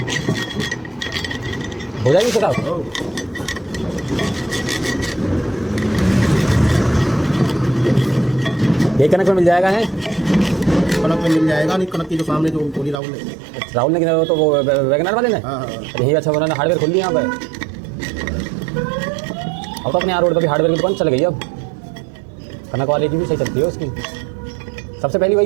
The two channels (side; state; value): left; drops out; at 13.0 s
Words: हो जाएगी साहब ये कनक में मिल जाएगा है कनक में मिल जाएगा नहीं कनक की जो सामने जो बोली राहुल ने राहुल ने किया तो वो वैगनर वाले ने हाँ हाँ यही अच्छा उन्होंने हार्डवेयर खोल लिया यहाँ पे अब तो अपने यहाँ रोड पर भी हार्डवेयर की दुकान चल गई अब कनक वाले की भी सही चलती है उसकी सबसे पहली